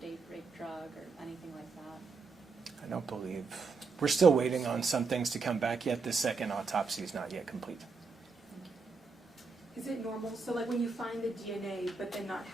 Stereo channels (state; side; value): quieter; left; 4.4 dB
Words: date, rape, drug, or anything like that? I don't believe. We're still waiting on some things to come back yet. The second autopsy is not yet complete. Is it normal? So like when you find the DNA, but then not